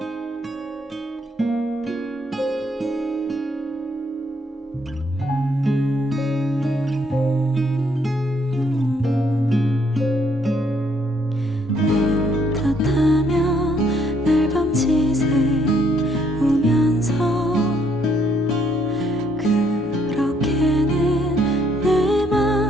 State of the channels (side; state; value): both; normal; correlation 0.69